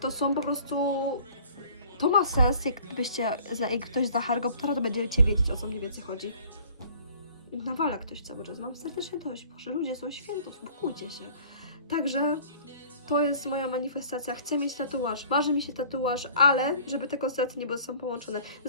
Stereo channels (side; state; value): both; inverted; correlation -0.51